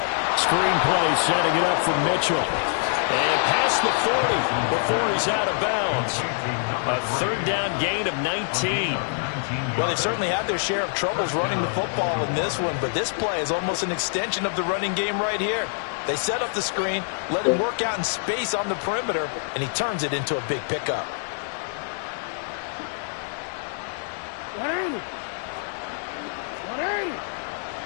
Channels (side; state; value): right; silent; digital silence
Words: Screen play setting it up for Mitchell. And past the 40 before he's out of bounds. A 3rd down gain of 19. Well, they've certainly had their share of troubles running the football in this one, but this play is almost an extension of the running game right here. They set up the screen, let him work out in space on the perimeter, and he turns it into a big pickup.